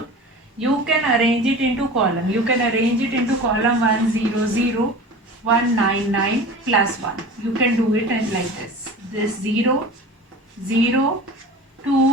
you can arrange it into column. You can arrange it into column 100,199 plus 1. You can do it like this. This 0, 0,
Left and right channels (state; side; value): normal; both; correlation 0.36